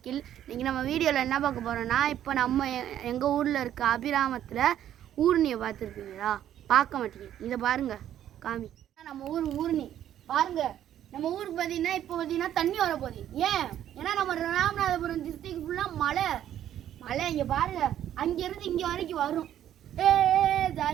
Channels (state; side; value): quieter; left; 11.1 dB